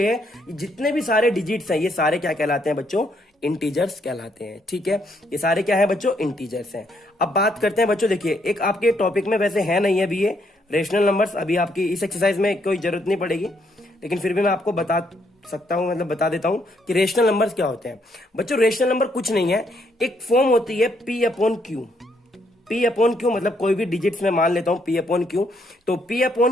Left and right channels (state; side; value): normal; both; correlation 0.73